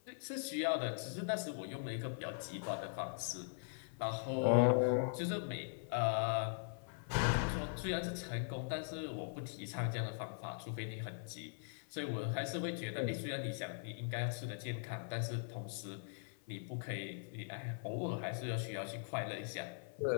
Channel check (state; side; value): silent; right; 50 dB below the other